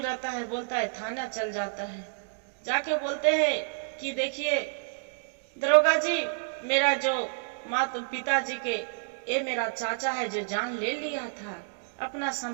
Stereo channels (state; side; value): silent; left; digital silence